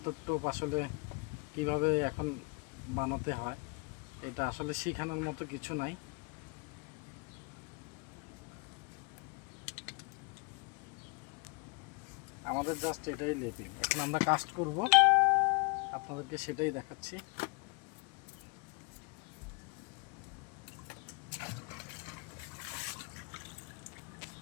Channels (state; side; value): quieter; right; 32.2 dB